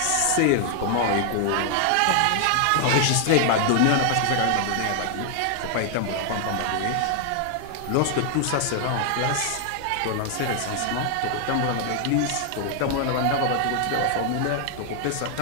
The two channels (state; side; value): different; both; correlation 0.00